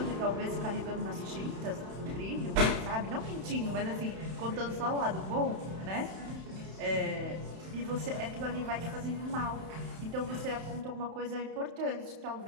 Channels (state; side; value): late; left; 31 ms